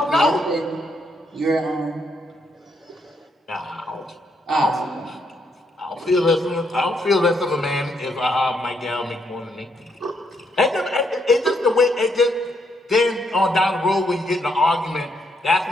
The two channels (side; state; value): both; normal; correlation 0.75